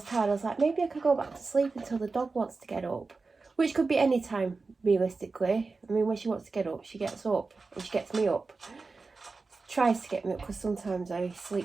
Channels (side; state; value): left; quieter; 4.0 dB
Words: tired, I was like, maybe I could go back to sleep until the dog wants to get up. Which could be any time, realistically. I mean, when she wants to get up, she gets up. And she gets me up. Tries to get me up because sometimes I